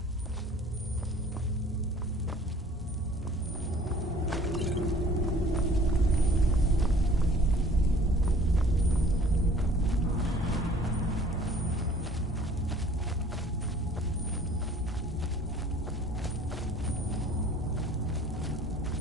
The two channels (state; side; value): normal; both; correlation 0.52